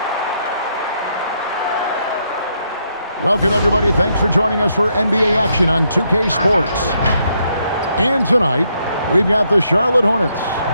Welcome, everybody. Thanks for joining us for NBA action on 2K Sports. And tonight, we've got the Charlotte Hornets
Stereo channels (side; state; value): both; inverted; correlation -0.76